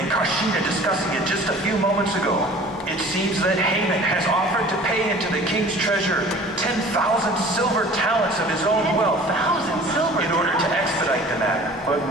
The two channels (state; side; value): normal; both; correlation 0.46